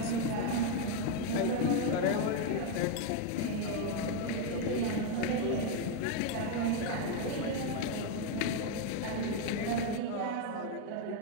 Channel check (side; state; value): both; different; correlation 0.02